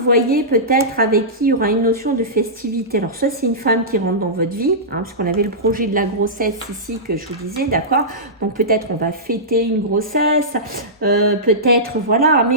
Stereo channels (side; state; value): both; normal; correlation -0.16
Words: peut-être avec qui il y aura une notion de festivité. Alors soit c'est une femme qui rentre dans votre vie, hein, puisqu'on avait le projet de la grossesse ici que je vous disais, d'accord? Donc peut-être on va fêter une grossesse, peut-être voilà,